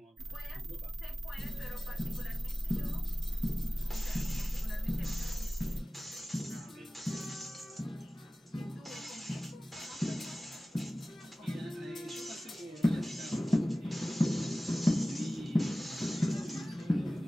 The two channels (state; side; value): normal; both; correlation 0.97